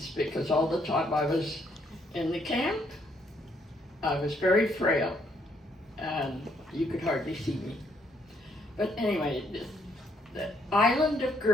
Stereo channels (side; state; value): both; normal; correlation 0.71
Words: because all the time I was in the camp, I was very frail and you could hardly see me. But anyway, the island of